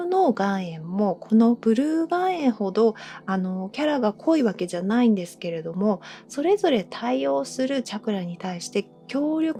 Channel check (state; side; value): identical; both; correlation 1.00